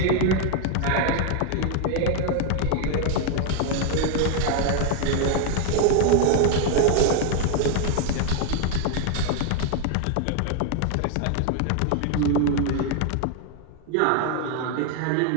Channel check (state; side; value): different; both; correlation 0.00